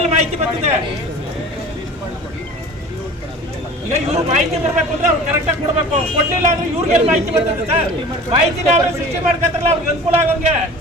ಮಾಹಿತಿ ಬರ್ತದೆ. ಈಗ ಇವ್ರು ಮಾಹಿತಿ ಬರ್ಬೇಕು ಅಂದ್ರೆ ಅವ್ರು ಕರೆಕ್ಟಾಗಿ ಕೊಡ್ಬೇಕು. ಕೊಡ್ಲಿಲ್ಲ ಅಂದ್ರೆ ಇವ್ರಿಗೆಲ್ಲ ಮಾಹಿತಿ ಬರ್ತದೆ ಸರ್. ಮಾಹಿತಿನ ಅವ್ರು ಸೃಷ್ಟಿ ಮಾಡ್ಕೊತಾರಲ್ಲ, ಅವ್ರಿಗೆ ಅನುಕೂಲ ಆಗೋಂಗೆ.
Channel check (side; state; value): both; normal; correlation 0.41